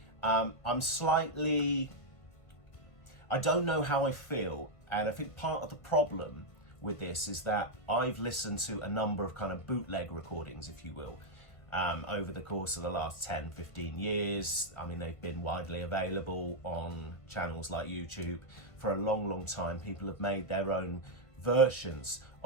I don't know how I feel, and I think part of the problem with this is that I've listened to a number of kind of bootleg recordings, if you will, over the course of the last 10-15 years. I mean, they've been widely available on channels like YouTube for a long time. People have made their own versions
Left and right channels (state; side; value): late; right; 1.5 ms